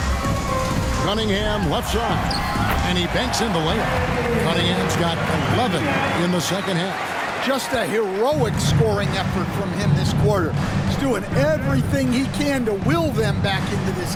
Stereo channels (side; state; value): both; identical; correlation 1.00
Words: Cunningham left side. And he banks in the layup. Cunningham's got 11 in the second half. Just a heroic scoring effort from him this quarter. He's doing everything he can to will them back into this